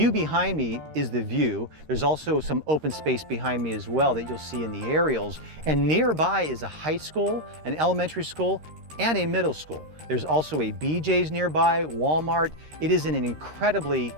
behind me is the view. There's also some open space behind me as well that you'll see in the aerials. And nearby is a high school, an elementary school, and a middle school. There's also a BJ's nearby, Walmart. It is in an incredibly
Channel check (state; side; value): late; left; 13 ms